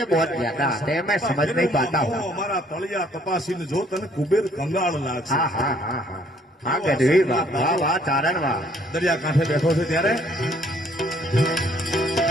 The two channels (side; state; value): both; normal; correlation 0.63